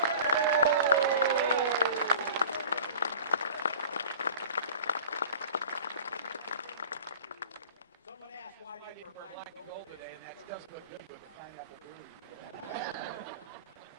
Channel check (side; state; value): both; inverted; correlation -0.42